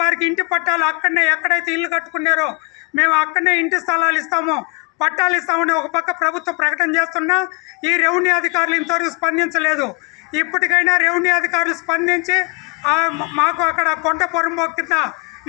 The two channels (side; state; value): right; quieter; 33.8 dB